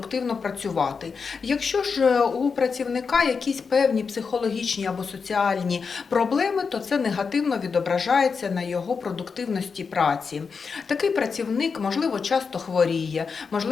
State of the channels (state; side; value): quieter; right; 5.4 dB